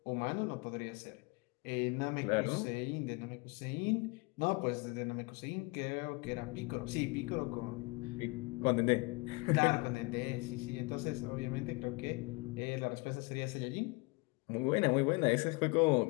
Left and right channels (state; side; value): quieter; right; 26.9 dB